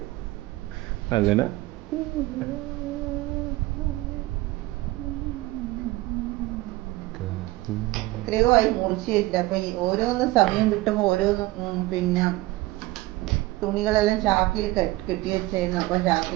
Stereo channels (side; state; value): left; quieter; 19.5 dB